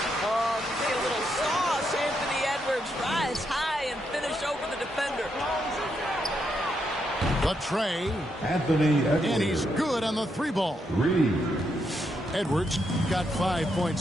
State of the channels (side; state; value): both; normal; correlation 0.80